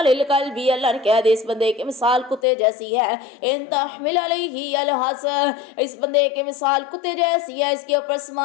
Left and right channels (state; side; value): drops out; right; at 2.4 s